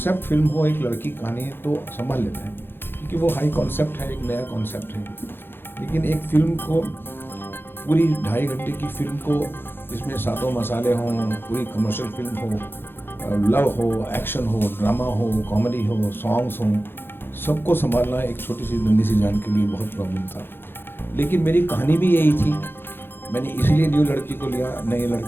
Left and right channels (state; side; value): late; right; 0.10 ms